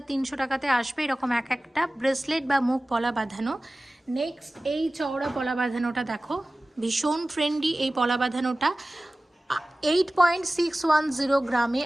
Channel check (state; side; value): normal; both; correlation 0.97